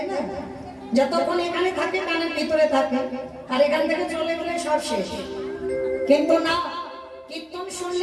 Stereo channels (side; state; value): both; identical; correlation 1.00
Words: না? যতক্ষণ এখানে থাকে কানের ভিতরে থাকে, আর এখান থেকে চলে গেলে সব শেষ। কিন্তু না, কীর্তন